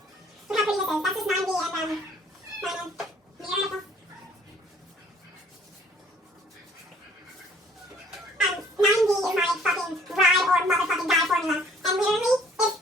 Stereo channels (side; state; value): both; normal; correlation 0.57